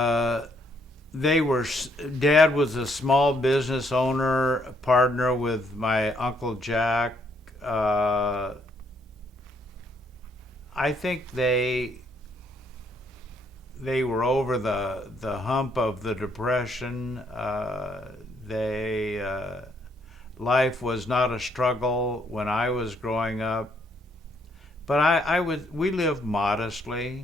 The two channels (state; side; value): normal; both; correlation 0.71